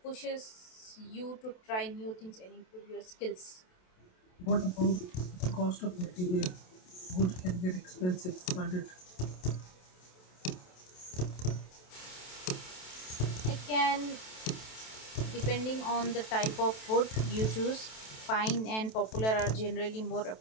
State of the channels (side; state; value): right; late; 27 ms